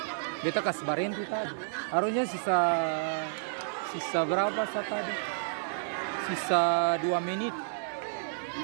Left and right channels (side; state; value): left; silent; 57 dB below the other